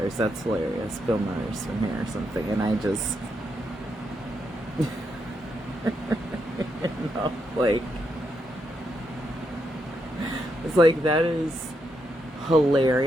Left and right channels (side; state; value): both; normal; correlation 0.81